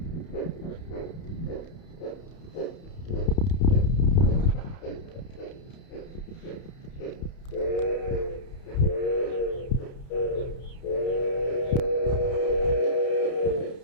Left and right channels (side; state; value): right; late; 30 ms